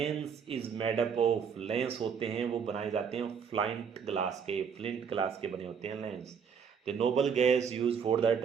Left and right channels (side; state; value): left; quieter; 6.8 dB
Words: is made up of. Lens होते हैं वो बनाए जाते हैं फ्लिंट ग्लास के बने होते हैं lens. The noble gas use for the